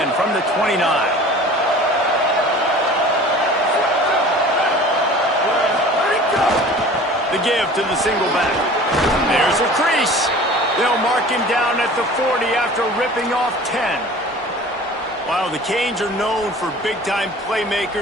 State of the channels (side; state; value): both; normal; correlation 0.43